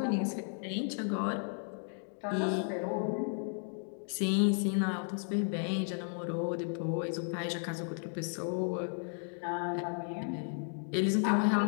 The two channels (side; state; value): right; silent; 55 dB below the other